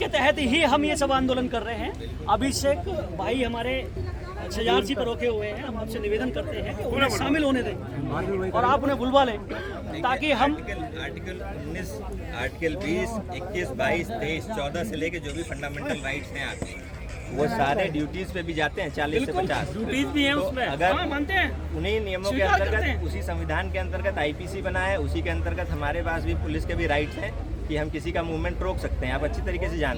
तहत ही हम ये सब आंदोलन कर रहे हैं। अभिषेक भाई हमारे शजारसी पर रोके हुए हैं। हम आपसे निवेदन करते हैं कि उन्हें शामिल होने दें और आप उन्हें बुलवा लें ताकि हम आर्टिकल 19, आर्टिकल 20, 21, 22, 23, 14 से लेके जो भी फंडामेंटल राइट्स हैं आपके, वो सारे ड्यूटीज पे भी जाते हैं 40 से 50 ड्यूटीज भी हैं तो उसमें। अगर हाँ, मानते हैं। उन्हीं नियमों के स्वीकार करते अंतर्गत, हैं। उसी संविधान के अंतर्गत आईपीसी बना है, उसी के अंतर्गत हमारे पास भी पुलिस के भी राइट्स हैं कि हम किसी का मूवमेंट रोक सकते हैं। आप अच्छी तरीके से जानते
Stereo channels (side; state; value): both; identical; correlation 1.00